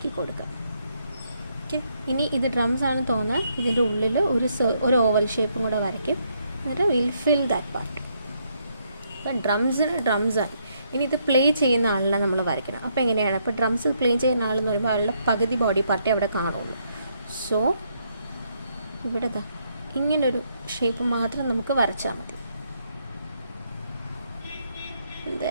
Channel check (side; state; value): both; inverted; correlation -0.74